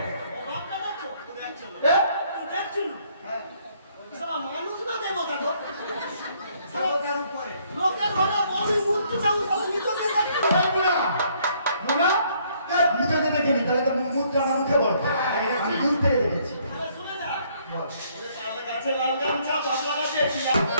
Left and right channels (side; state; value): both; inverted; correlation -0.66